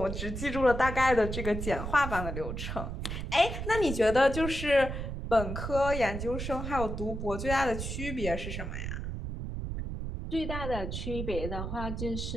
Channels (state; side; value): noise; right; rumble, 5 dB below the sound